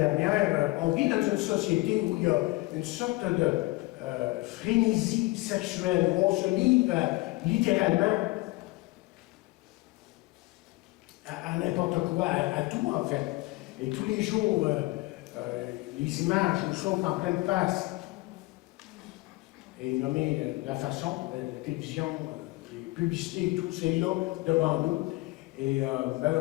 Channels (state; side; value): quieter; right; 21.8 dB